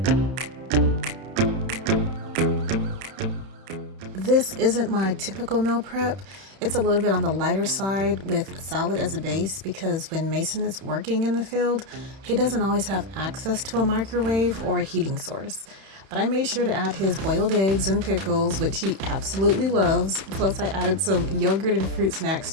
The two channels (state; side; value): late; left; 31 ms